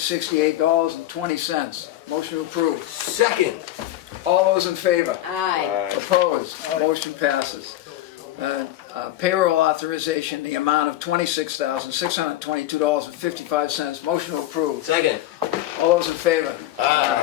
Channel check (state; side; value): quieter; right; 14.3 dB